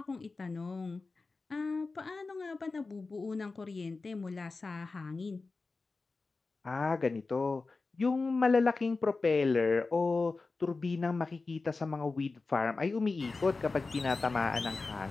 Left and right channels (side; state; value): right; quieter; 3.9 dB